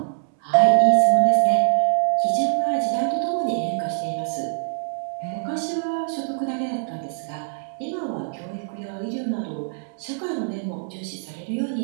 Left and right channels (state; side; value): silent; left; digital silence